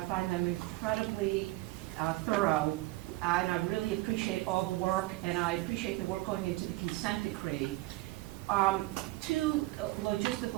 find them incredibly thorough, and I really appreciate all the work, and I appreciate the work going into the consent decree. Two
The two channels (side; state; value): left; quieter; 20.0 dB